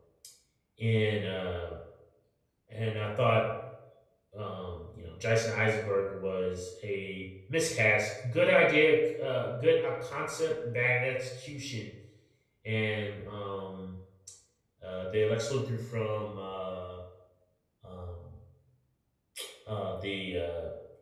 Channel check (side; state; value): both; identical; correlation 1.00